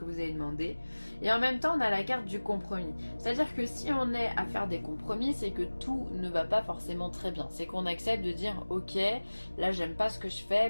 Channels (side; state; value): both; inverted; correlation -1.00